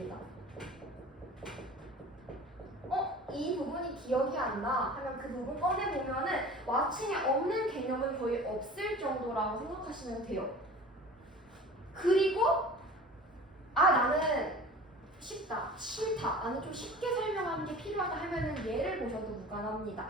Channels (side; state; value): both; normal; correlation 0.41